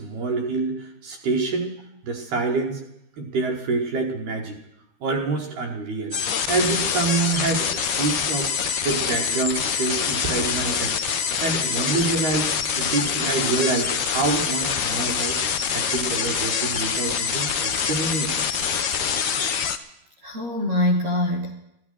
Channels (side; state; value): left; late; 13 ms